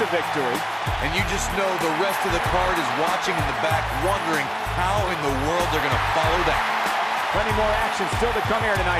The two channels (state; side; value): identical; both; correlation 1.00